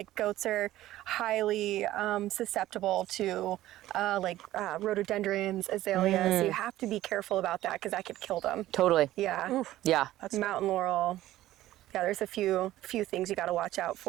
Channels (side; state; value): left; quieter; 14.9 dB